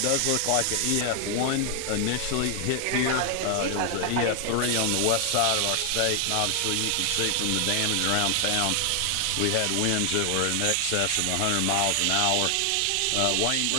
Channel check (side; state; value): both; different; correlation 0.00